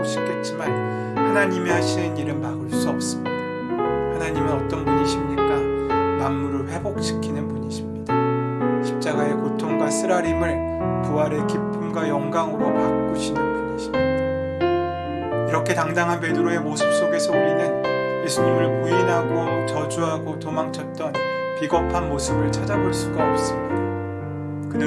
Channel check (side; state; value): both; identical; correlation 1.00